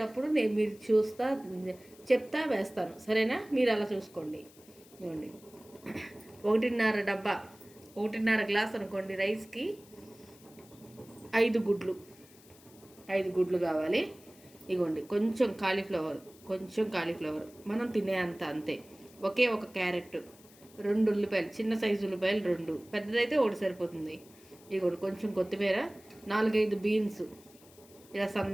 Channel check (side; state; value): left; noise; hiss, 25 dB below the sound